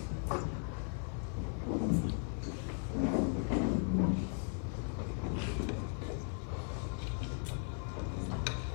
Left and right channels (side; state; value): right; silent; 53 dB below the other